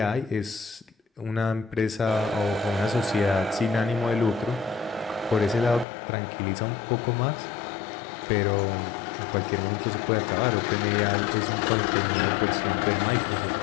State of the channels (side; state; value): right; drops out; at 5.9 s